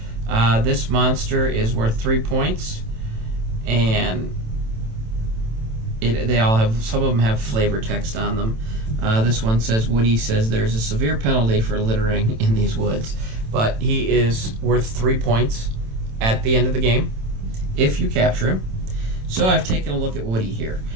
This monster is worth 3 points, and they all have, some of them have flavor text on them. This one says, Woody says there's a severe penalty for littering in these woods, but he is worth 3 points at the end of the game if you capture him. So I've taken a look at Woody here,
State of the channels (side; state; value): left; late; 27 ms